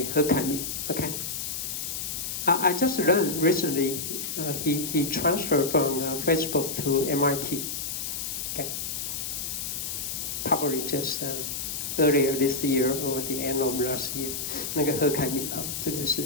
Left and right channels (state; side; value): noise; left; hiss, 4 dB below the sound